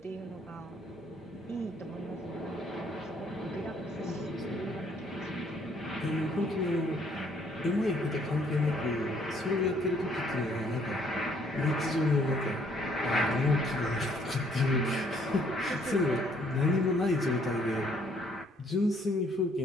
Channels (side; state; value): both; normal; correlation 0.64